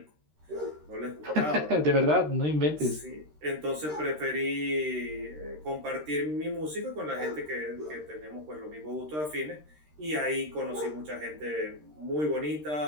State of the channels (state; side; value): late; left; 13 ms